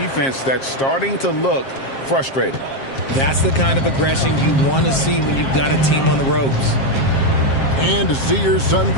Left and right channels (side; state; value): right; late; 7.5 ms